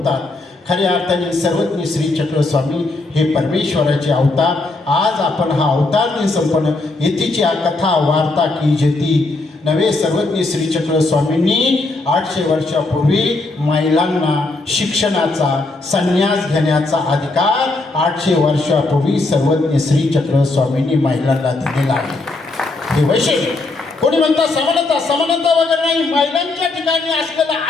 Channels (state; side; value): quieter; right; 3.2 dB